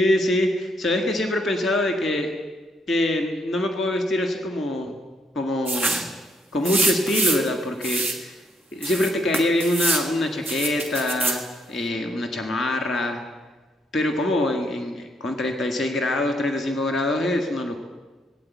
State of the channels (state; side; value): normal; both; correlation 0.73